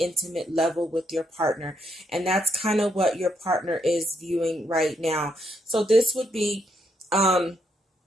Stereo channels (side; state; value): both; normal; correlation 0.76